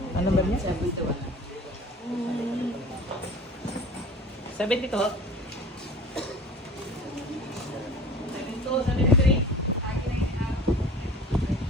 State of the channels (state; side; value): normal; both; correlation 0.41